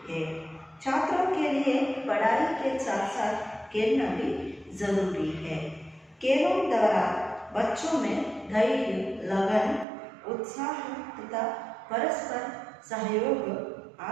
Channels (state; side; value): drops out; left; at 9.9 s